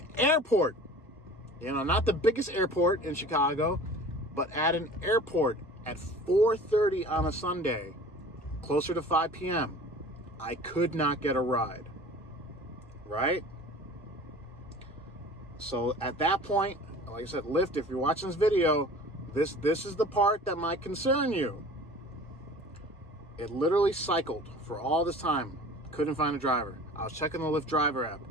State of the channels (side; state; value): both; normal; correlation 0.43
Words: airport. Not the biggest airport in Chicago, but at an airport at 4:30 on a Sunday, closer to 5 p.m., I could not get a ride, right? So at that point, like I said, Lyft, if you're watching this video, this is the part that might concern you. It literally cycled for all this time. Couldn't find a driver. I was checking the Lyft driver app.